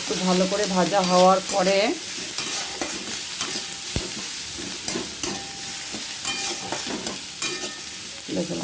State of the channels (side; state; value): both; identical; correlation 1.00